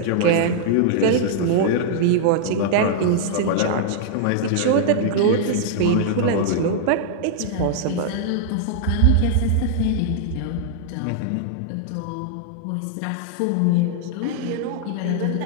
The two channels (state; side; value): different; both; correlation -0.01